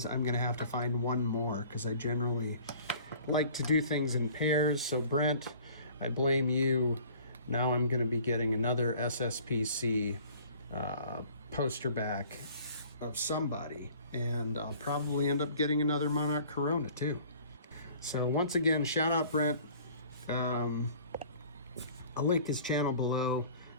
I'm going to have to find one more because I generally like to do things in pairs. So Brent, I blame you. Now I'm going to be getting another SSPC poster back of somebody, and I'll probably end up getting another Monarch Corona too. So once again, shout out Brent. I'll link his channel below.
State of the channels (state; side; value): inverted; both; correlation -0.50